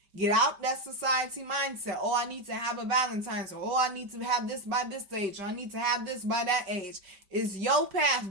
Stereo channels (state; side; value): late; left; 5.1 ms